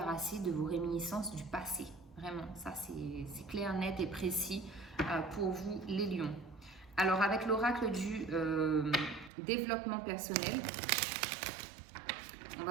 de vos réminiscences du passé. Vraiment, ça, c'est clair, net et précis pour vous, les lions. Alors, avec l'oracle du développement personnel, on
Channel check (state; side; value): drops out; left; at 9.3 s